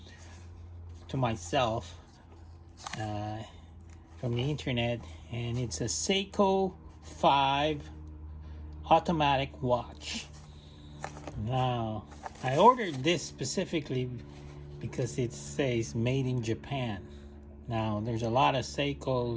to myself from the internet, and it's a Seiko 5 automatic watch. Now, I ordered this specifically because it says made in Japan. Now, there's a lot of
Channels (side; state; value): both; identical; correlation 1.00